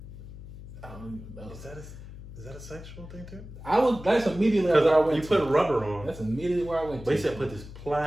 I don't know. is that a sexual thing too? That's immediately where I went. You put rubber on. That's immediately where I went. But he said put this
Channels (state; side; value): noise; left; hum, 14 dB below the sound